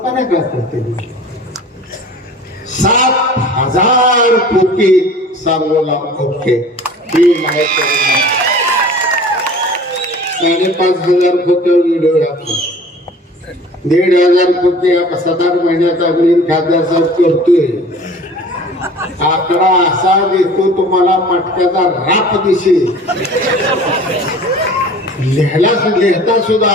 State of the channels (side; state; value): both; normal; correlation 0.44